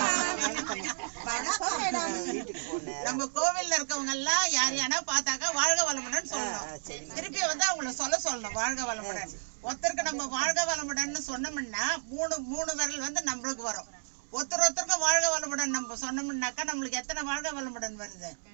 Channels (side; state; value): left; silent; digital silence